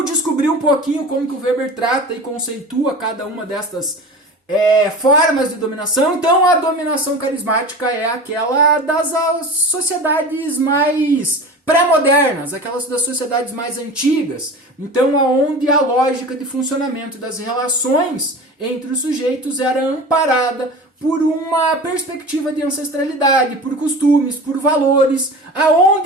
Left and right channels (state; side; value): normal; both; correlation 0.34